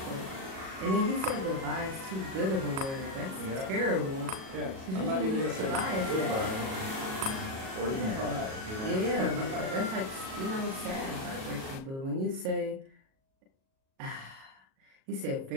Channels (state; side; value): late; left; 37 ms